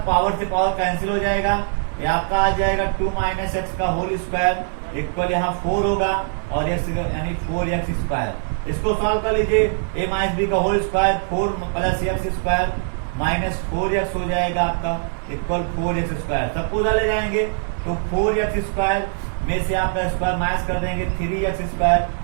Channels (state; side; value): silent; left; digital silence